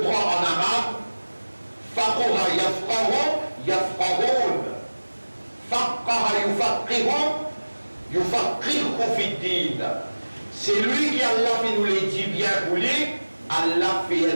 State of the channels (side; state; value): both; inverted; correlation -1.00